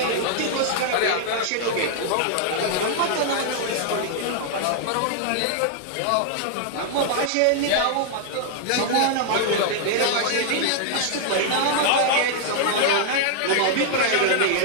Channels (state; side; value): different; both; correlation 0.00